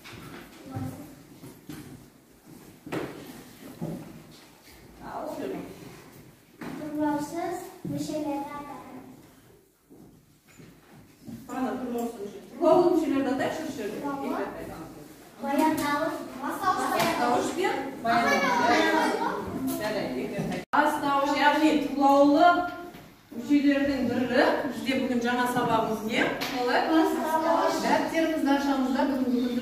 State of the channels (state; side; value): identical; both; correlation 1.00